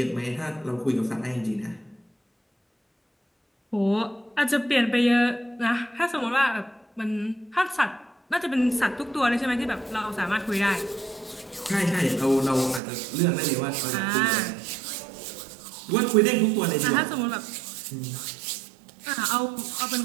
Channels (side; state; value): left; drops out; at 12.8 s